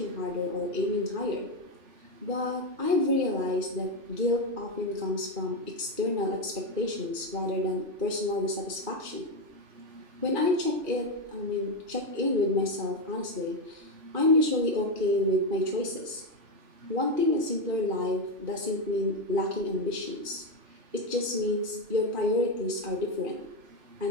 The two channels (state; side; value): late; left; 2.4 ms